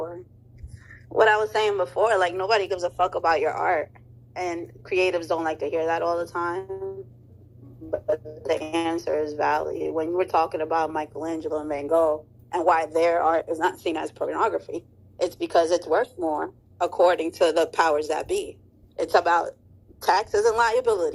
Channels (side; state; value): both; identical; correlation 1.00